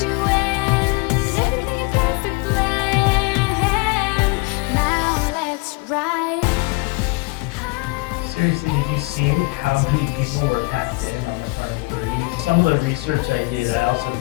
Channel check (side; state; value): right; quieter; 26.2 dB